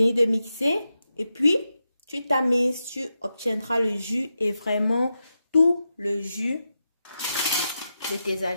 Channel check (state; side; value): inverted; both; correlation -0.88